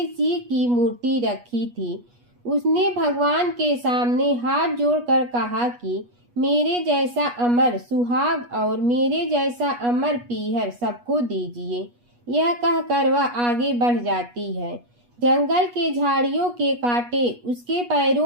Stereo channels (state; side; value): late; left; 8.3 ms